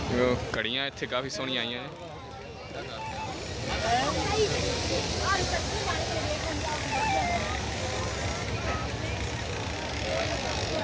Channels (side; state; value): both; identical; correlation 1.00